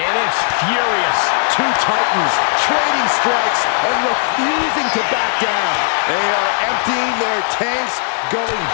it's furious. Two titans trading strikes and refusing to back down. They are emptying their tanks, going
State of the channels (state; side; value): silent; right; digital silence